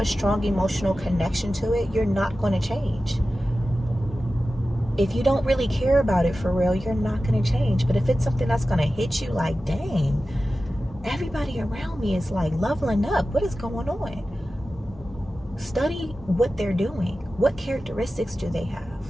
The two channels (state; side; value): normal; both; correlation 0.94